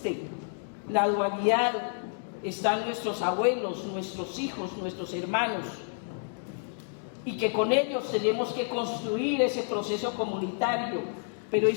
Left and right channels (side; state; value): right; silent; digital silence